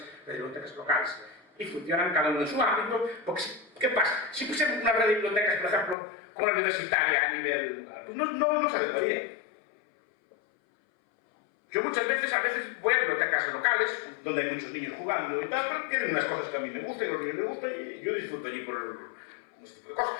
redes de bibliotecas locales. Y funcionan cada uno en su ámbito, porque ¿qué pasa? Si pusiéramos una red de bibliotecas, por ejemplo, como la universitaria a nivel local, pues no se adecuaría. Yo muchas veces, voy a bibliotecas locales, donde hay muchos niños jugando y tal, pero tienen unas cosas que a mí me gustan y a los niños les gustan y yo disfruto allí con este tipo de cosas.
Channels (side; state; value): right; drops out; at 6.0 s